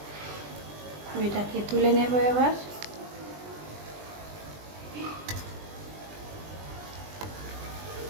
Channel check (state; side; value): late; left; 20 ms